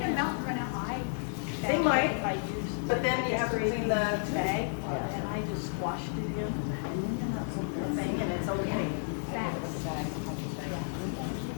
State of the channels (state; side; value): silent; right; 57 dB below the other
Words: melt and run out high? They might, but then you have to clean the And I just squashed it in. thing and it's okay.